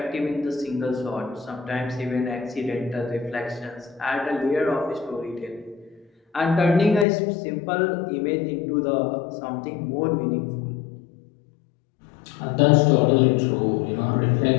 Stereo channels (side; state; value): right; drops out; at 7.1 s